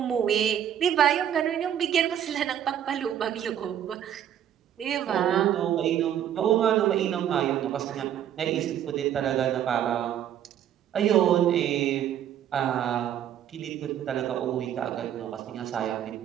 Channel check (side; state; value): left; quieter; 10.2 dB